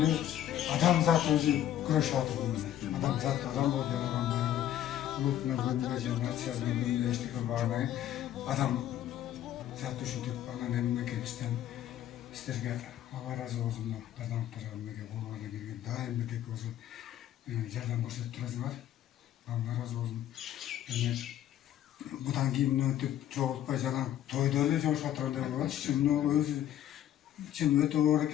адамзат өзі күреш аты бұны. Адамзат адам болып жаралған баяғы. Ұлтына бөлінбе же нациясына бөлінбе ештеңе бармай. Адам зат үшін тек анан мемлекеттен істерге Алла разы болсын. Азаматтарға болғаны келген дайым бітек осы жардам көрсетіп тұрасыңар. Алла разы болсын. Бұдан кейін өтіп жоғалтпай жаңа тойда эле жошуп атыргандай болот. Чын өтө оор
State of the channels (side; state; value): right; quieter; 11.7 dB